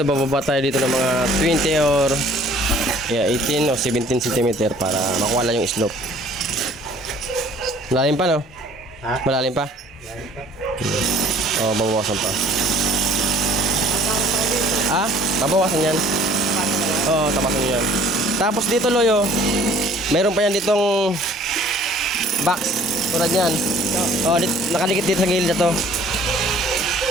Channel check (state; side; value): normal; both; correlation 0.54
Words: bababa tayo dito ng mga 20 or 18 o 17 cm para makuha lang yung slope. Malalim pa, no? Ha? Malalim pa? O, babawasan pa. Ah? Babawasan yan? Oo, tapasan nyo yan. Tapos dito, Loyo, mayroon pa yan ditong box. Tulad yan. O, nakadikit dito sa gilid na to.